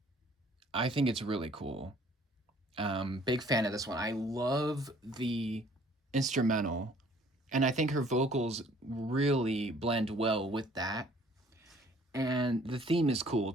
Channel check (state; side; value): normal; both; correlation 0.57